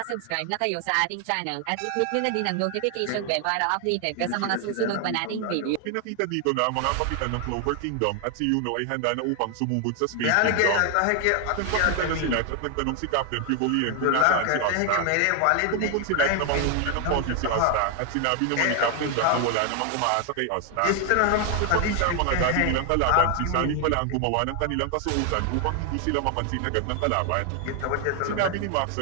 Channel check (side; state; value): both; different; correlation 0.00